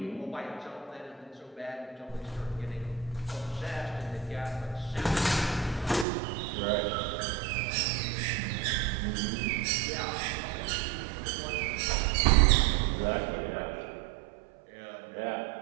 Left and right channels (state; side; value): drops out; left; at 6.1 s